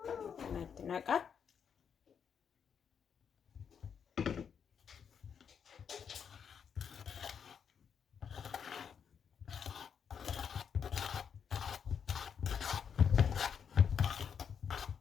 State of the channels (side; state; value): right; quieter; 7.2 dB